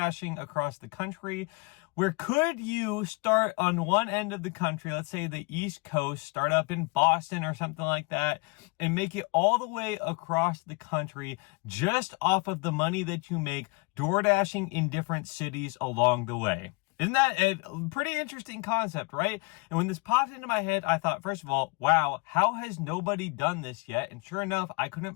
across the country. Where could you start on one end of the country, let's say the East Coast, start up in Boston or something like that, and make it all the way across the country just off of the money that you make DoorDashing in different cities along the way? Isn't that a pretty interesting concept, right? And when this popped into my head, I thought, first of all, wow, how has nobody done this yet? And sure enough, I couldn't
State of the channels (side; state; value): right; quieter; 28.6 dB